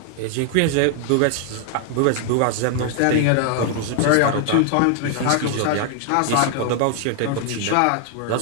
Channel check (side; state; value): both; different; correlation 0.00